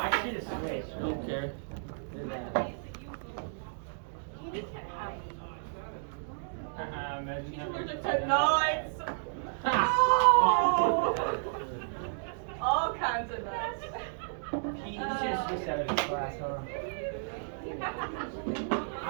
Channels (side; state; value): left; silent; digital silence